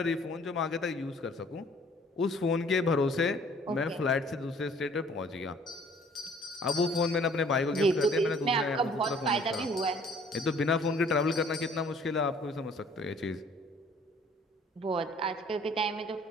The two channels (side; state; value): both; normal; correlation 0.56